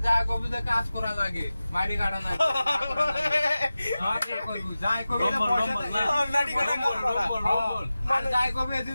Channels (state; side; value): inverted; both; correlation -0.95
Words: যা কবিতা কাজ করা লাগে মারি কাটা না মারি করব যাই কবিতা পয়সা নাটি কাটা আর যাই কবি